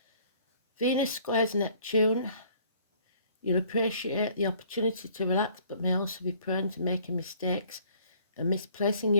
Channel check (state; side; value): inverted; both; correlation -0.58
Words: Venus squares Neptune. You'll appreciate the opportunity to relax, but may also be prone to making mistakes and misplacing